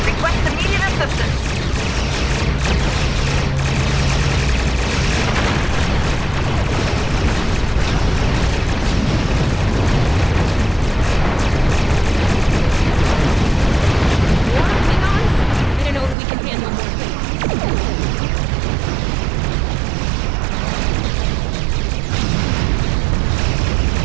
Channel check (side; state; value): left; drops out; at 16.2 s